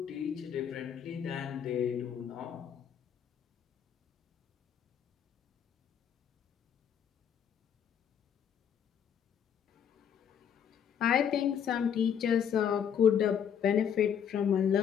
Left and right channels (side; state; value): right; quieter; 8.3 dB